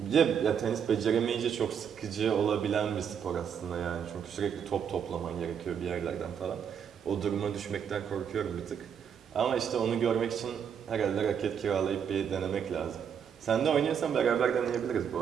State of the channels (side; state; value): left; quieter; 7.8 dB